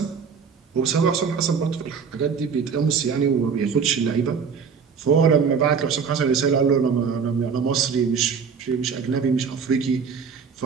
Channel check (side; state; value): left; quieter; 6.1 dB